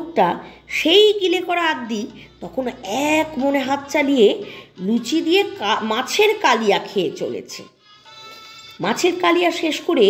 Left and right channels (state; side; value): identical; both; correlation 1.00